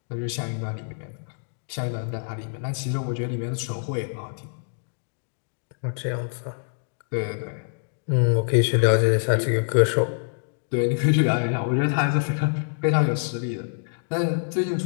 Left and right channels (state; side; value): silent; right; digital silence